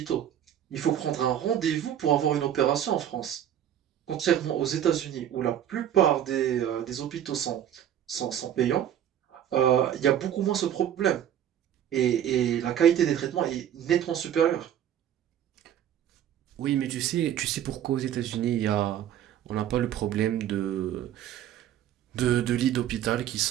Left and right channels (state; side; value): quieter; left; 10.5 dB